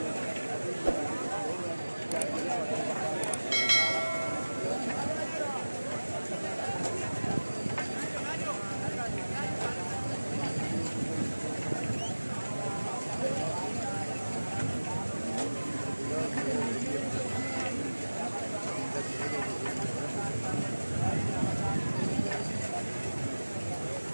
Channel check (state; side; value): inverted; both; correlation -1.00